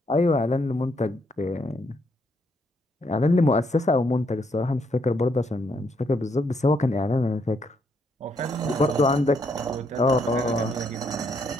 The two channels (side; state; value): both; normal; correlation 0.74